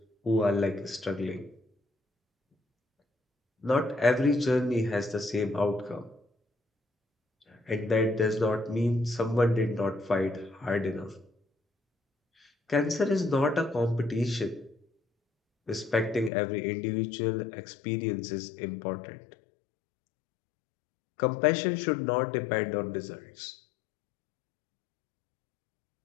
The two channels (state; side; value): drops out; right; at 16.3 s